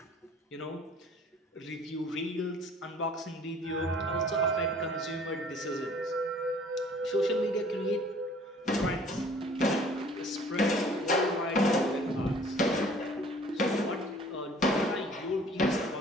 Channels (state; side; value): normal; both; correlation 0.53